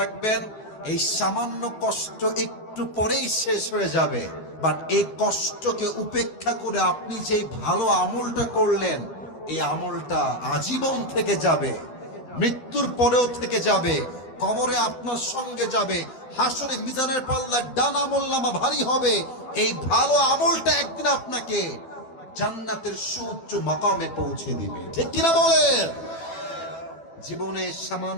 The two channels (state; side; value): late; right; 12 ms